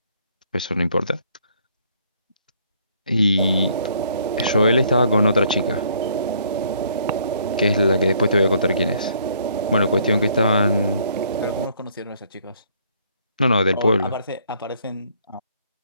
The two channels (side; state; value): both; inverted; correlation -0.65